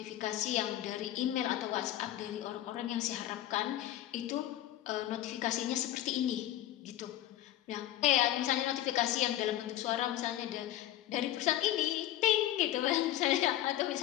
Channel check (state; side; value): quieter; right; 13.5 dB